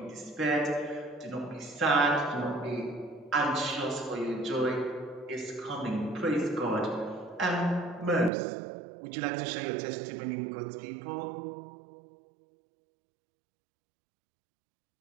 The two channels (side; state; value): left; drops out; at 8.3 s